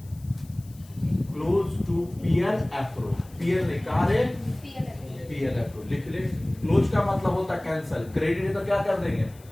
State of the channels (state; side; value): noise; left; hiss, 25 dB below the sound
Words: to PL एप्रो। पीएल नहीं, कहा रे, पीएल एप्रो लिख ले। क्लोज का मतलब होता है कैंसल, क्रेडिट है तो क्या कर देंगे,